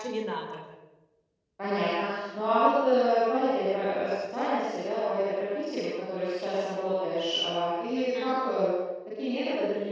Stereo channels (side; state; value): both; identical; correlation 1.00